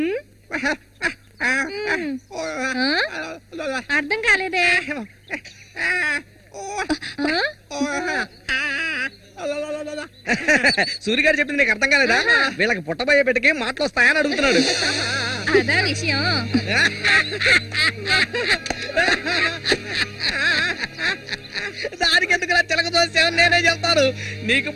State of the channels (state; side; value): identical; both; correlation 1.00